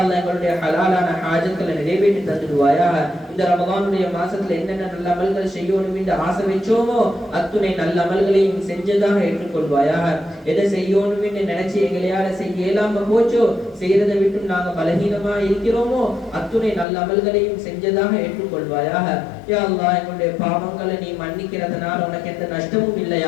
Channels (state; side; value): drops out; right; at 16.9 s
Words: அல்லாஹ் எங்களுடைய ஹலாலான ஹாஜத்களை நிறைவேற்றி தந்துடுவாயாக. இந்த ரமலானுடைய மாசத்துல என்னென்ன நல்ல அமல்கள் செய்யணும் என்று ஆசை வச்சோமோ அத்துணை நல்ல அமல்களையும் செஞ்சதாக ஏற்றுக்கொள்வாயாக. எதை செய்யணும் என்று நினைச்சு எங்களையால செய்ய இயலாம போச்சோ செய்யறதை விட்டு நாங்க பலகீனமா இருக்கிறோமோ அத்துணை நல்ல அமல்களையும் செஞ்சதாக ஏற்றுக்கொள்வாயாக. யா அல்லாஹ் எங்களுடைய பாவங்களை பாவங்களை நீ மன்னிக்கிறதுனால உனக்கு எந்த நஷ்டமும்